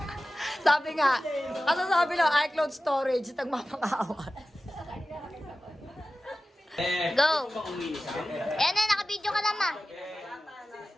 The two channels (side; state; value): both; normal; correlation 0.95